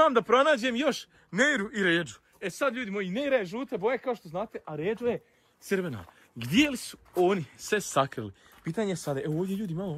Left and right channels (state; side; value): identical; both; correlation 1.00